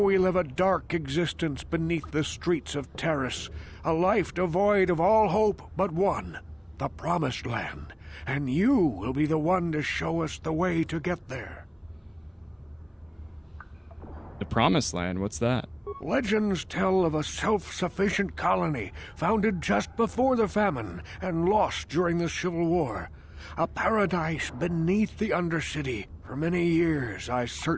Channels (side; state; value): both; identical; correlation 1.00